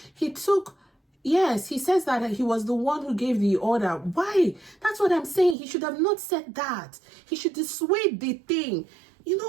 yes, he says that he was the one who gave the order. Why? That's what I'm saying. He should have not said that. He should dissuade the thing.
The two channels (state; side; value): drops out; left; at 5.6 s